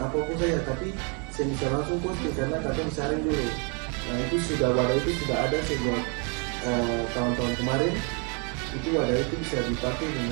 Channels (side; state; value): left; quieter; 35.9 dB